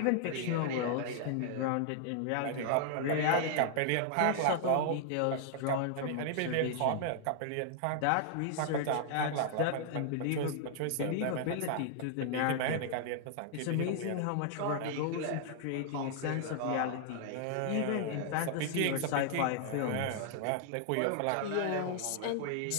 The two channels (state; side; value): different; both; correlation -0.01